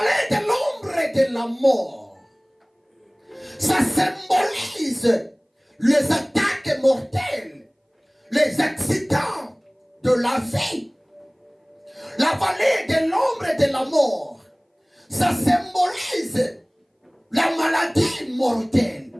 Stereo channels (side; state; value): both; identical; correlation 1.00